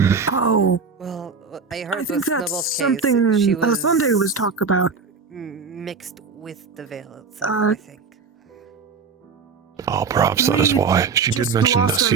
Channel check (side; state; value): left; quieter; 5.2 dB